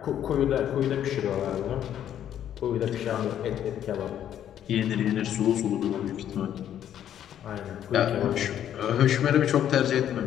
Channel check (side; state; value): right; quieter; 10.4 dB